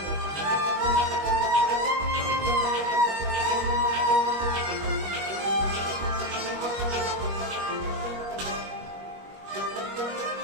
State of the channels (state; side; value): late; left; 21 ms